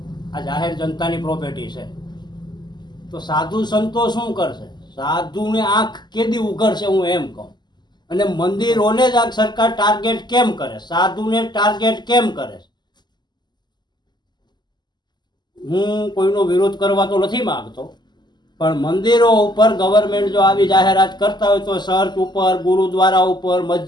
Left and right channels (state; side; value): late; right; 0.21 ms